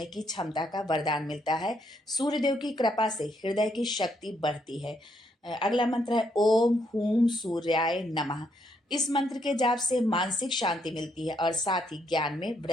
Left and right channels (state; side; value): normal; both; correlation 0.74